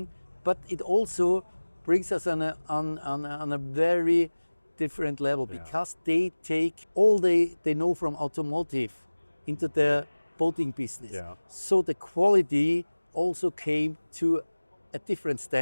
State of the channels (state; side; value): inverted; both; correlation -1.00